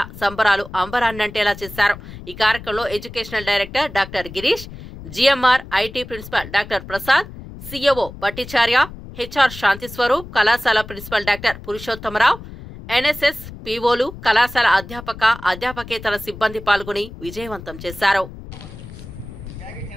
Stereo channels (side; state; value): left; noise; rumble, 14 dB below the sound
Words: సంబరాలు అంబరాన్నంటేలా చేశారు. ఈ కార్యక్రమంలో educational director doctor Girish, GMR IT principal doctor Prasad, CEO పట్టిచార్య, హెచ్ఆర్ శాంతిస్వరూప్, కళాశాల ప్రిన్సిపల్ డాక్టర్ పురుషోత్తమరావు, ఎన్ఎస్ఎస్ పీఓలు, కళాశాల అధ్యాపకేతర సిబ్బంది పాల్గొని విజయవంతం చేశారు.